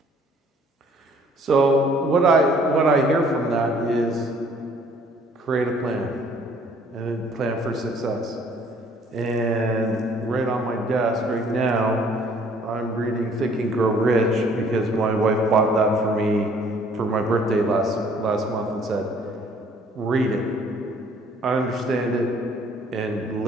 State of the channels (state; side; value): normal; both; correlation 0.58